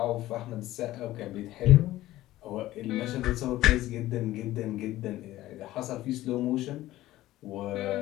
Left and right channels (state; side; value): quieter; right; 15.7 dB